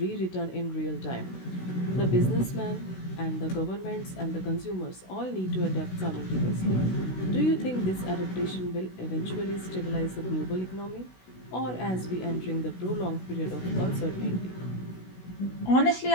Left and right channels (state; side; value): late; right; 16 ms